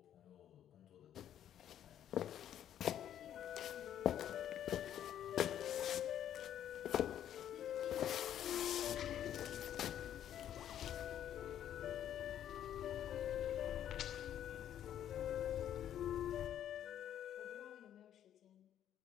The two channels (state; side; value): quieter; right; 10.6 dB